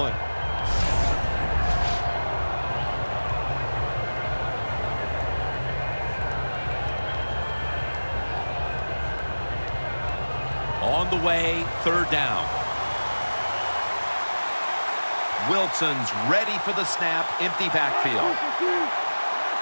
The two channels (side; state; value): both; inverted; correlation -1.00